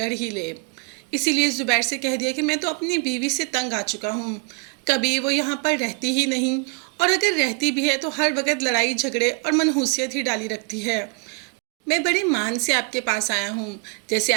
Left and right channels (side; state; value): left; quieter; 34.3 dB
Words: ही ले। इसीलिए ज़ुबैर से कह दिया कि मैं तो अपनी बीवी से तंग आ चुका हूँ। कभी वो यहाँ पर रहती ही नहीं, और अगर रहती भी है तो हर वक्त लड़ाई झगड़े और मनहूसियत ही डाली रखती है। मैं बड़े मान से आपके पास आया हूँ। जैसे